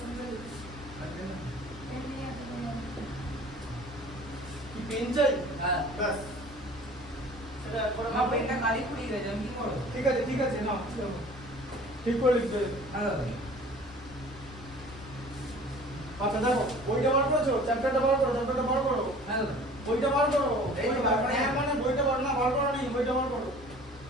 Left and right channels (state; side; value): normal; both; correlation 0.47